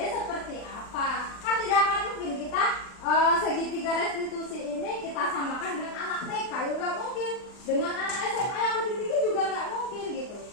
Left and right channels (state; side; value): late; right; 39 ms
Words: seperti apa. Kan tidak akan mungkin kita segitiga restitusi ini kita samakan dengan anak TK, ya nggak mungkin. Dengan anak SMA yang lebih tinggi juga nggak mungkin gitu.